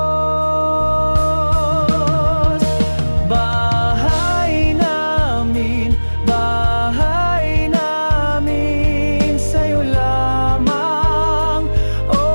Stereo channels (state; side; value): inverted; both; correlation -1.00